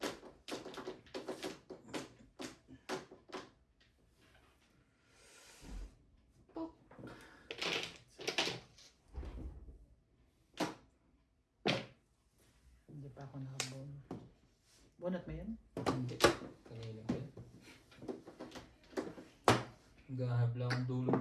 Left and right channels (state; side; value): identical; both; correlation 1.00